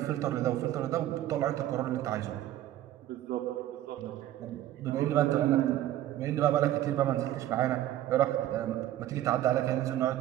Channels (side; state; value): left; quieter; 13.2 dB